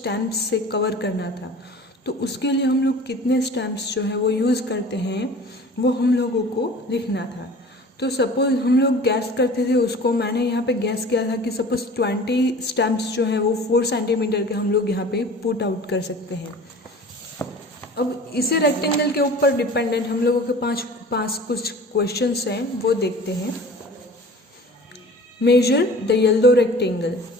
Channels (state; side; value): normal; both; correlation 0.42